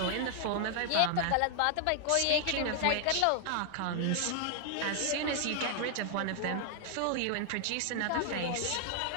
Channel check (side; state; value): both; different; correlation 0.00